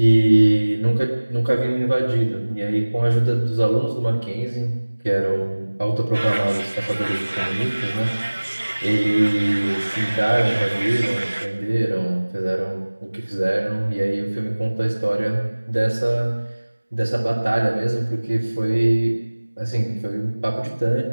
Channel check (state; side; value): inverted; both; correlation -1.00